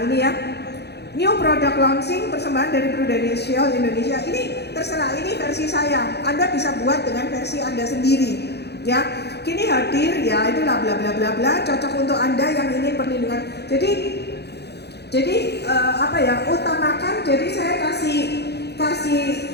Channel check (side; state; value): right; late; 0.48 ms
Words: ini ya, new product launching persembahan dari Prudential Indonesia. Ini terserah, ini versi saya. Anda bisa buat dengan versi Anda sendiri. Ya, kini hadir, ya itulah bla bla bla bla, cocok untuk Anda yang ingin perlindungan. Jadi apa ya, utamakan. Jadi saya kasih